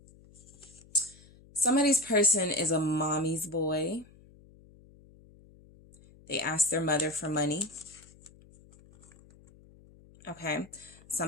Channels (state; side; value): noise; left; hum, 25 dB below the sound